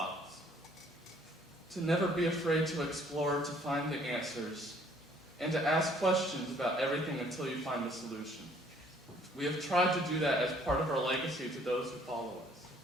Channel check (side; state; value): both; normal; correlation 0.60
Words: To never be afraid to explore, to find the answers, and to ask questions about everything until you find the solution. We have tried to do that as part of our legacy to those who follow us.